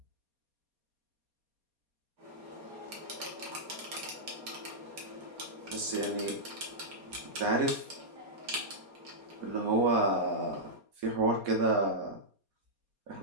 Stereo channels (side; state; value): left; late; 4.2 ms